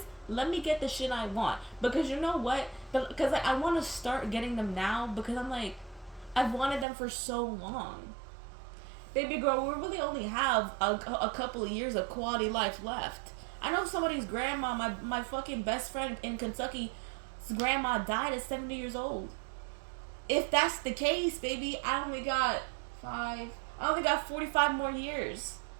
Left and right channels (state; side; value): drops out; left; at 6.9 s